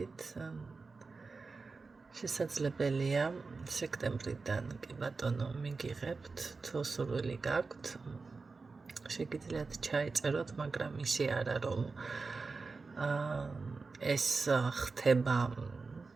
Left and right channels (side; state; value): left; quieter; 4.2 dB